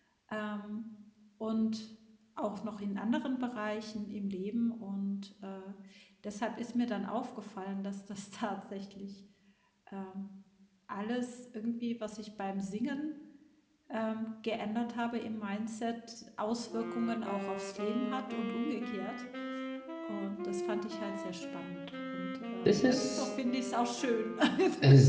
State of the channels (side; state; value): both; identical; correlation 1.00